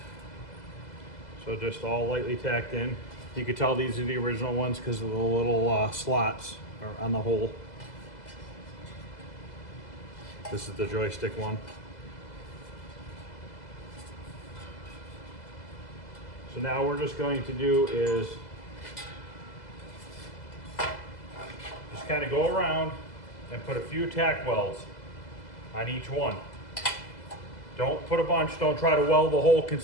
So just all lightly tacked in. You can tell these are the original ones because of the little slots on the hole. This is the joystick one. So now we're just going to do is just kind of go around and put a few tack welds on each one. Don't put a bunch, don't try to weld the hole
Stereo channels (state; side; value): late; right; 2.0 ms